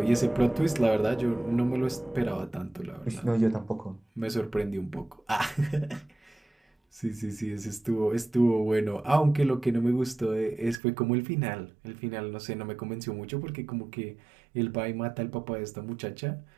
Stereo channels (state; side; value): drops out; left; at 10.8 s